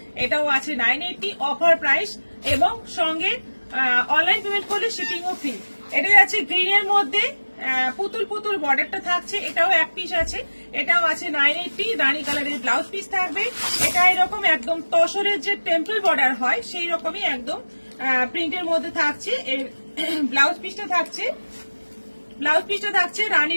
এটাও আছে 980 অফার প্রাইস, এবং সঙ্গে অনলাইন পেমেন্ট করলে শিপিংও ফ্রি। এটা যাচ্ছে গ্রিনের মধ্যে পুতুল বর্ডারটা থাকছে, এটাও এক পিস আছে, এটাও আছে 980। রানী কালারের ব্লাউজ পিস থাকবে। এটা এরকম একদম তসরের যে টেম্পল বর্ডার হয় সেই রকমই একদম প্রিন্টের মধ্যে থাকছে। ব্লাউজ পিসটা থাকছে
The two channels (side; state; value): both; inverted; correlation -1.00